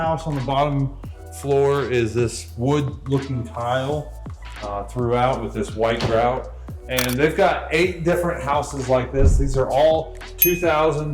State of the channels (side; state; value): both; identical; correlation 1.00